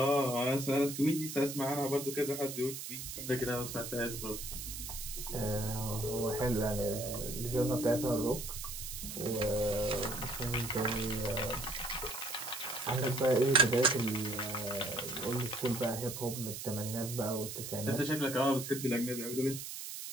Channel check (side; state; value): right; noise; hiss, 7 dB below the sound